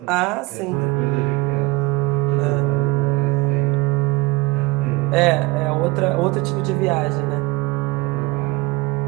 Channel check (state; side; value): quieter; left; 21.9 dB